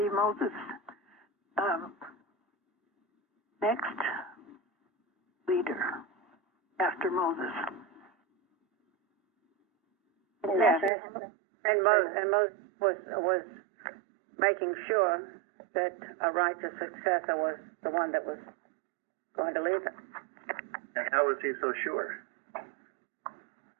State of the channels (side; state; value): left; drops out; at 10.9 s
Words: Moses' next leader after Moses. Yes, and Moses was making sure that a righteous successor was the one that was going to lead them. And how was he so sure?